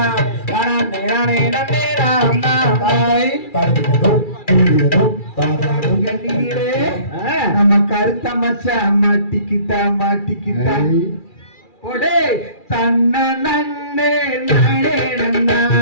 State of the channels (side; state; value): right; late; 2.4 ms